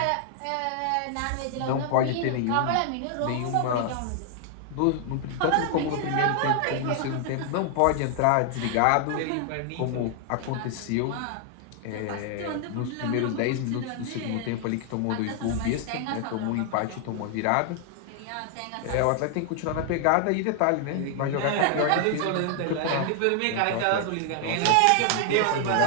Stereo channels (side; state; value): both; different; correlation 0.00